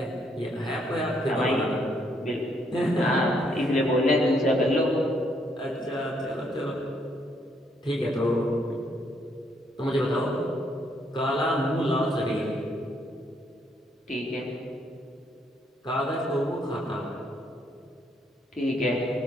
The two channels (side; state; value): both; normal; correlation 0.72